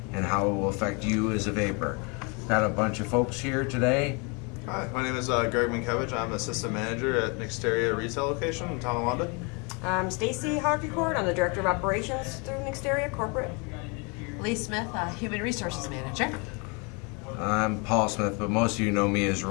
and how it will affect you as a vapor. Got a bunch of folks here today. Hi, my name is Greg Minkiewicz. I'm Assistant Manager at Nexteria Retail Location in Tonawanda. I'm Stacy Hoggecourt. I'm the Director of Operations through Nexteria Corporate. Lee Smith, Human Resources Manager. I'm Paul Smith, but most of you know me as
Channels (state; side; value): quieter; right; 32.0 dB